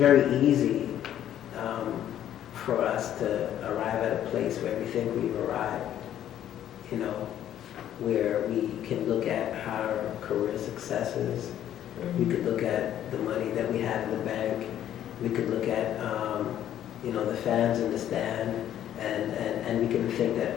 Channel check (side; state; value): right; quieter; 11.2 dB